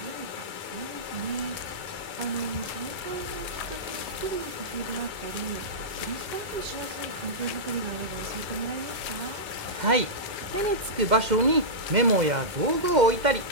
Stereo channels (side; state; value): left; late; 2.1 ms